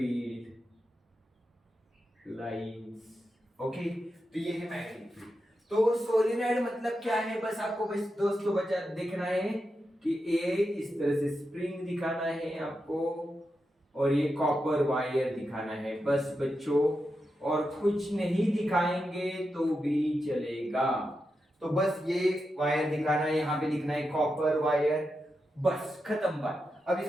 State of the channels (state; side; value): normal; both; correlation 0.88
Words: lines. Okay, तो ये है मैग्नेटिक फील्ड। तो सोलेनॉइड मतलब क्या है, बस आपको बस दोस्तों बचा देखना है कि ये इस तरह से स्प्रिंग दिखाना है आपको और ये कॉपर वायर दिखाना है, बस बच्चों, और कुछ नहीं दिखाएंगे तो भी चलेगा। तो बस ये वायर दिखाना है, यहाँ पे लिखना है कॉपर वायर, बस खत्म बात। अब